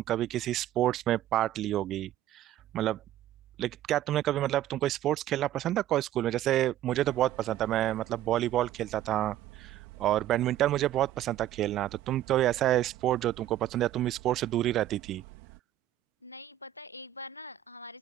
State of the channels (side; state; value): left; quieter; 13.2 dB